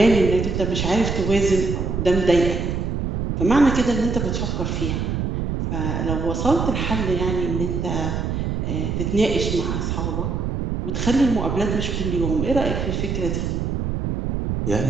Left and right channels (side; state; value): right; noise; rumble, 1 dB below the sound